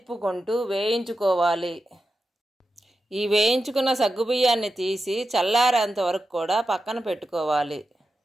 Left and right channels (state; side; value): normal; both; correlation 0.90